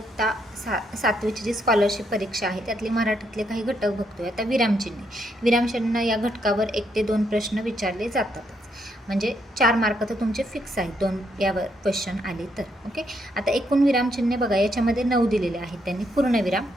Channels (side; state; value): both; normal; correlation 0.76